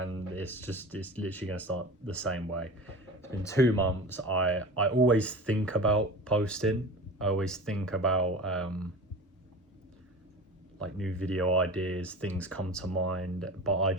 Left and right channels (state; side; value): normal; both; correlation 0.34